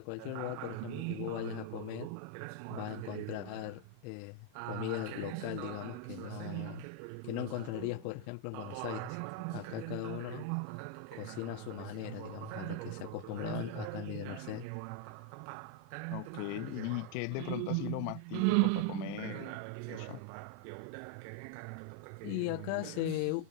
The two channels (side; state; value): both; different; correlation 0.00